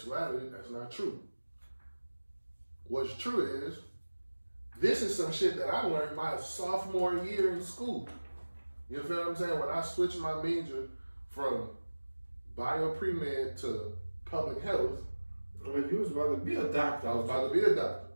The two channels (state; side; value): inverted; both; correlation -1.00